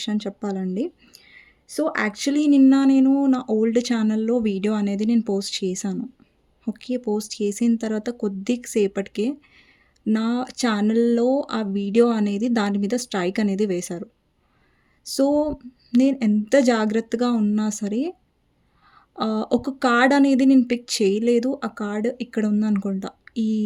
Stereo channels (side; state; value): both; identical; correlation 1.00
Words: చెప్పాలండి. సో, యాక్చువల్లీ నిన్న నేను నా ఓల్డ్ ఛానల్‌లో వీడియో అనేది నేను పోస్ట్ చేశాను. ఓకే. పోస్ట్ చేసిన తర్వాత కొద్ది సేపటికే నా ఛానల్‌లో ఆ వీడియో అనేది దాని మీద స్ట్రైక్ అనేది వేశారు. సో, నేను ఎంత జాగ్రత్తగా ఉన్నా సరే ఒక కార్డ్ అనేది నేను పిక్ చేయలేదు. ఆ కార్డ్ ఇక్కడ ఉందనుకుంటా ఈ